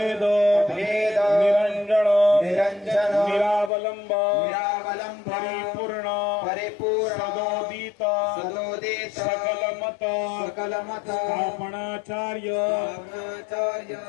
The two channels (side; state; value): right; drops out; at 3.7 s